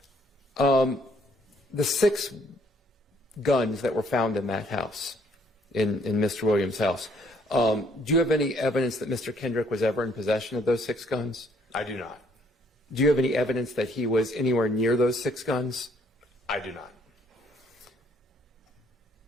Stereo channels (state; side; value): normal; both; correlation 0.65